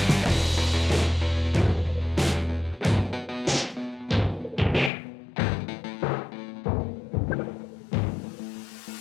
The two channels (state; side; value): drops out; right; at 4.9 s